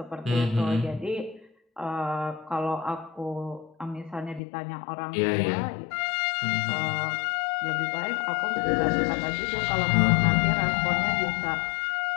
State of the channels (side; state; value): right; drops out; at 4.4 s